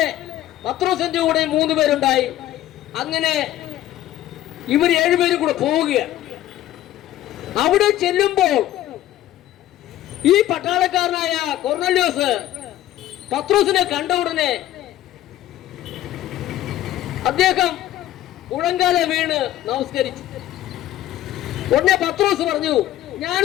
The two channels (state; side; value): quieter; right; 13.6 dB